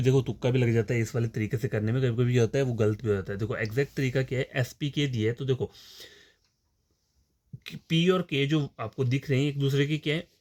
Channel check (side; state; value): both; identical; correlation 1.00